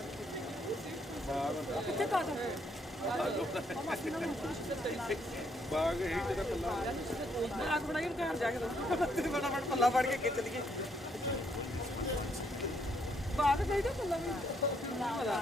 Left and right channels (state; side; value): normal; both; correlation 0.72